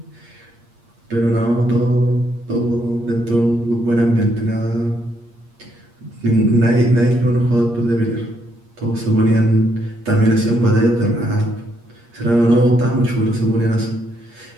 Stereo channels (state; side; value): late; left; 8.5 ms